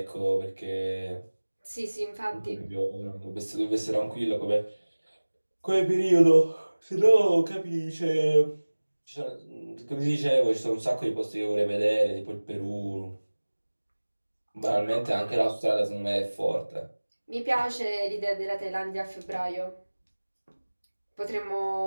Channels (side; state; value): both; inverted; correlation -1.00